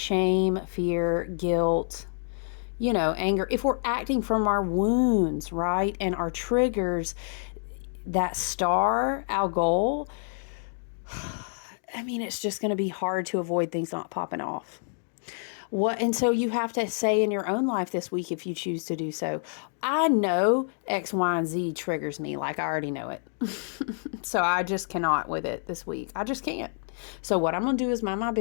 fear, guilt, you know, anger, if we're acting from our wounds, right, and our triggers, that star, Algol, I mean, it's just going to be hard to avoid things not popping off. And so you have to say in your own life this week, if you choose to do so, I know X, Y, and Z triggers me. Like, I already know it. So I just cannot with it this week. I just can't. So what I'm going to do is mind my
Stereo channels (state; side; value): silent; right; digital silence